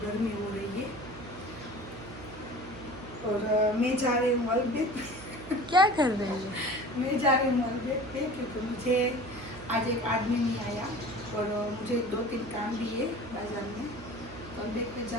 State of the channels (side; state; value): right; noise; hum, 14 dB below the sound